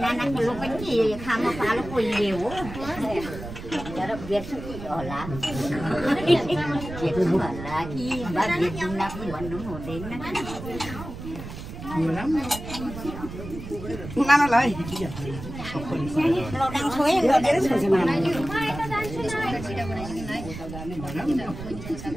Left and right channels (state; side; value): noise; right; rumble, 10 dB below the sound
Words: लो पनि खामा पालो कोही हो तर बेर्छु होला बेर्छु होला कि बा बेर्छुला पनि भन्नु हुँदैन नानालाई लडाङ छोए गरेर छोड्छ